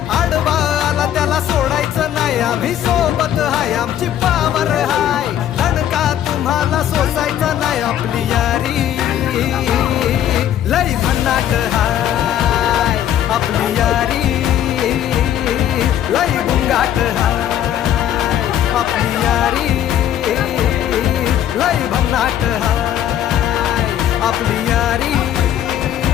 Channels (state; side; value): quieter; right; 10.9 dB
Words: आडवा आला त्याला सोडायचं नाही. आम्ही सोबत हाय आमची पावर हाय, दणका तुम्हाला सोसायचा नाही. आपली यारी लय भन्नाट हाय, आपली यारी लय बुंगाट हाय. आपली यारी लय भन्नाट हाय, आपली यारी